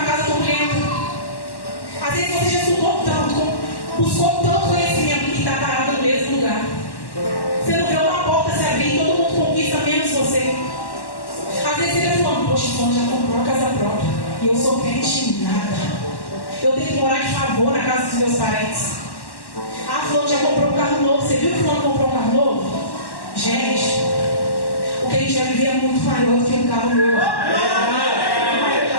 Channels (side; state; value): right; late; 1.1 ms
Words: casa turbulenta. Às vezes você já estudou tanto, buscou tanto conhecimento e está parado no mesmo lugar. Você não vê uma porta se abrir e todo mundo conquista menos você. Às vezes você está falando: poxa, fulano já comprou a casa própria e eu sou crente em nada. Eu tenho que morar de favor na casa dos meus parentes. Ah, fulano já comprou um carro novo. Você viu que fulano comprou um carro novo? Gente, o que a gente vai viver é muito maior do que um carro novo.